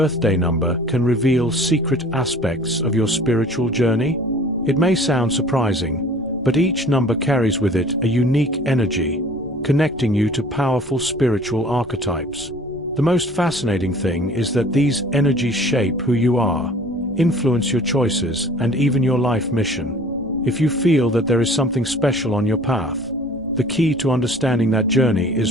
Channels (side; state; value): left; noise; rumble, 22 dB below the sound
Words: number can reveal secret aspects of your spiritual journey? It may sound surprising, but each number carries with it a unique energy, connecting you to powerful spiritual archetypes. The most fascinating thing is that these energies shape who you are, influence your choices, and even your life mission. If you feel that there is something special on your path, the key to understanding that journey